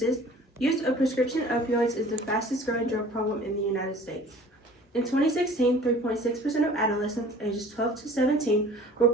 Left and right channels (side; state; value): both; normal; correlation 0.47